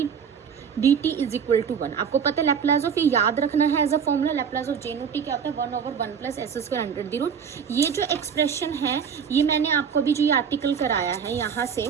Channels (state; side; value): quieter; left; 7.0 dB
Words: dt = 1। आपको पता है लैप्लास ऑफ ये याद रखना है as a formula, Laplace of J naught t क्या होता है 1/1 + s² अंडर दी रूट। ये जो एक्सप्रेशन है ये मैंने आपको अभी जो ये आर्टिकल कराया है यहाँ से